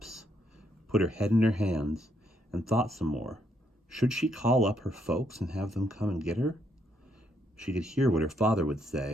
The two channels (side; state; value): both; normal; correlation 0.75